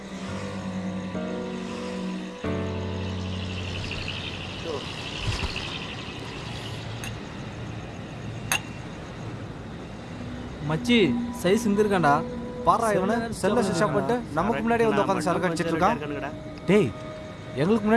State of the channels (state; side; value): identical; both; correlation 1.00